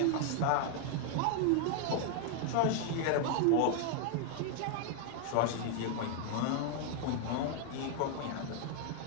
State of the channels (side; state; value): both; different; correlation 0.00